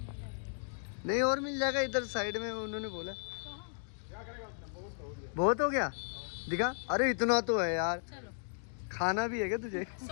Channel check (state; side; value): silent; right; digital silence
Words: नहीं और मिल जाएगा इधर साइड में, उन्होंने बोला। बहुत हो गया दिखा। अरे इतना तो है यार, खाना भी है क्या तुझे?